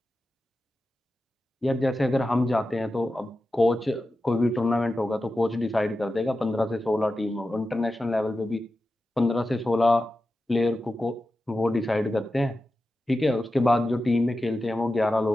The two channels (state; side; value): normal; both; correlation 0.92